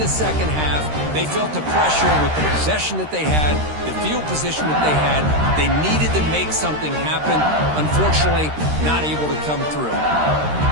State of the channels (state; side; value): late; left; 13 ms